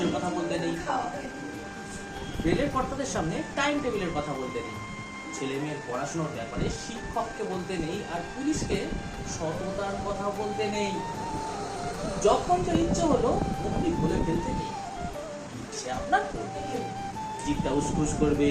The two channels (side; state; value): both; identical; correlation 1.00